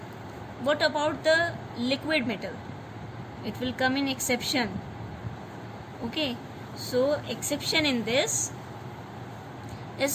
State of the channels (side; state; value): both; identical; correlation 1.00